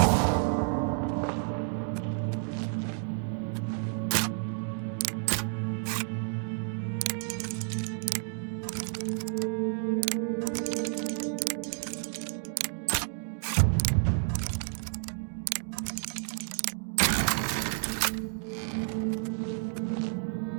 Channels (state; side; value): silent; left; 57 dB below the other